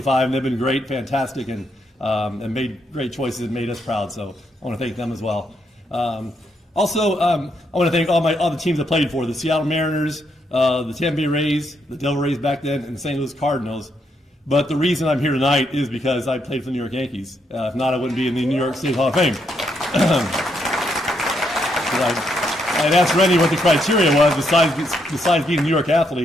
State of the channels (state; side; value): normal; both; correlation 0.77